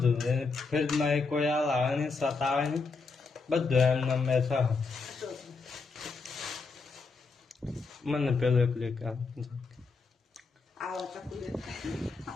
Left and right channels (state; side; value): quieter; right; 4.4 dB